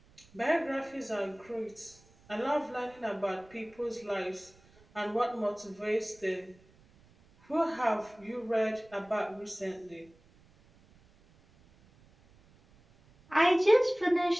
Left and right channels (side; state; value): right; noise; rumble, 28 dB below the sound